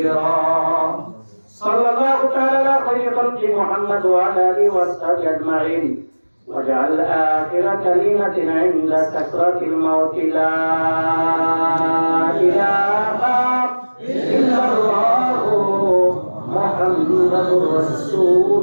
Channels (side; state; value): both; inverted; correlation -1.00